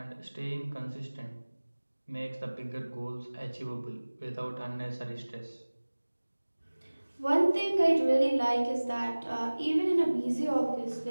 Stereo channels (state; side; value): inverted; both; correlation -1.00